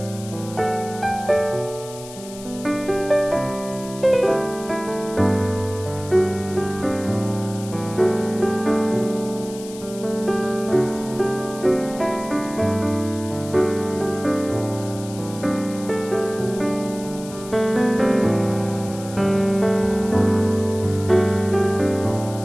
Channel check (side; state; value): left; noise; hiss, 16 dB below the sound